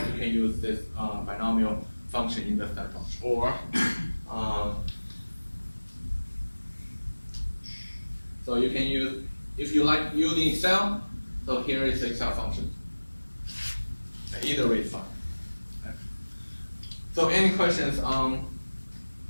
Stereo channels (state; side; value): inverted; both; correlation -1.00